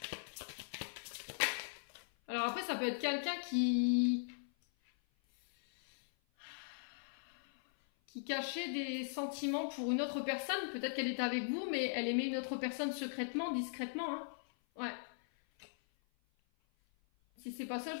Alors après, ça peut être quelqu'un qui cachait des sentiments pour une autre personne. Peut-être qu'elle était avec vous, mais elle aimait une autre personne secrètement, discrètement. Hein. Ouais. Si c'est pas ça,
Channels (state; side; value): silent; right; 51 dB below the other